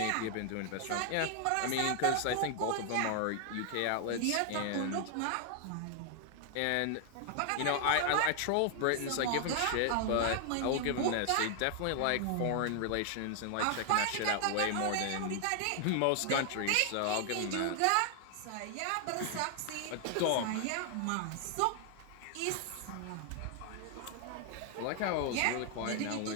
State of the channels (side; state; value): both; different; correlation 0.00